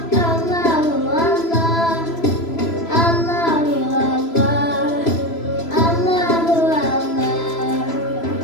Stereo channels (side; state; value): right; late; 3.0 ms